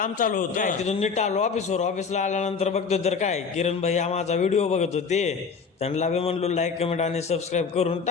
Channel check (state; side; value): quieter; right; 5.5 dB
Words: चालू होतं. तिथून नीट आलो ऑफिसला आल्यानंतर बघतोय तर काय किरण भाई हा माझा व्हिडिओ बघत होते. त्यांना बी म्हणलो लाईक कमेंट आणि सबस्क्राईब करून